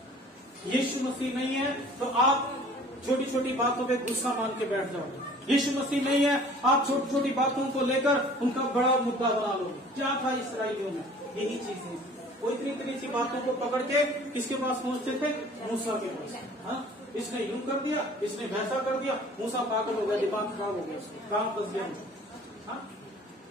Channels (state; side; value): normal; both; correlation 0.49